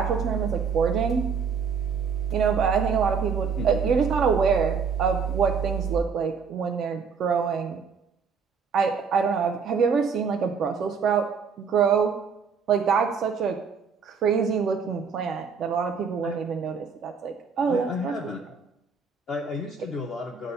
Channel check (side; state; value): left; quieter; 5.8 dB